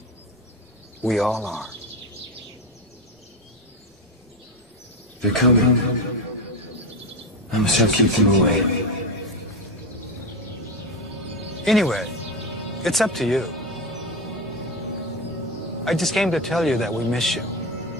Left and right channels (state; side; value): normal; both; correlation 0.16